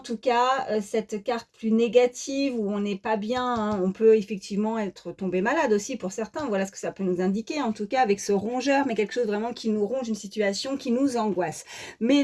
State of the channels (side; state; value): both; identical; correlation 1.00